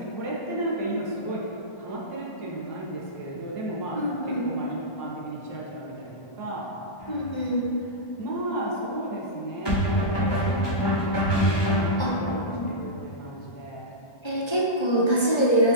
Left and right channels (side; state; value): right; late; 1.3 ms